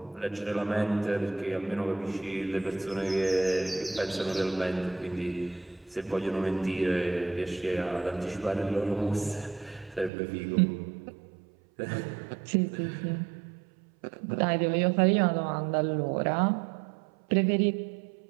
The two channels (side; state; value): left; drops out; at 10.1 s